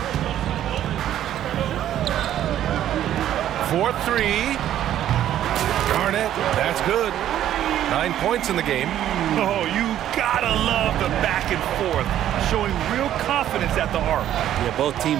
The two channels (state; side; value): quieter; left; 11.6 dB